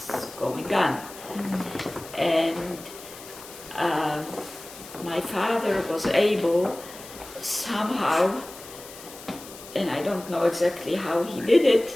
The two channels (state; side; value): noise; left; hiss, 16 dB below the sound